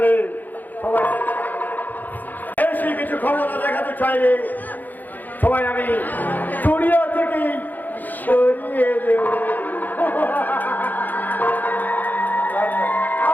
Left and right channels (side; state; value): right; late; 0.085 ms